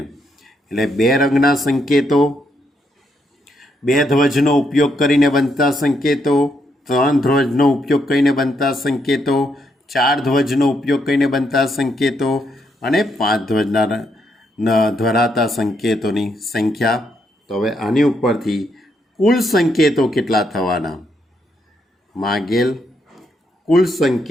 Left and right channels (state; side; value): normal; both; correlation 0.77